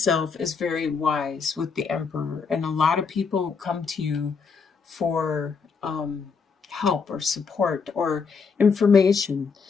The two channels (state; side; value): quieter; right; 5.4 dB